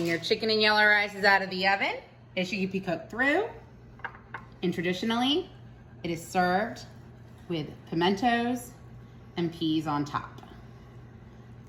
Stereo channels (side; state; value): both; identical; correlation 1.00